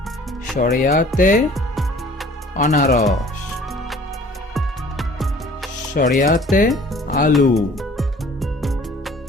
শরিয়াতে আনারস, শরিয়াতে আলু,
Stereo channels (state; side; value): normal; both; correlation 0.51